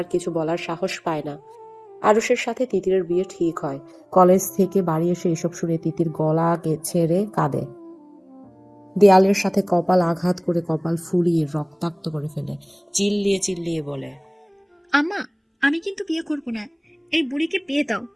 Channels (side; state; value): both; identical; correlation 1.00